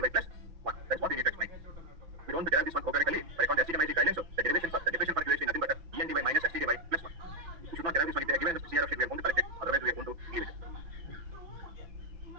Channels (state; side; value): late; left; 5.9 ms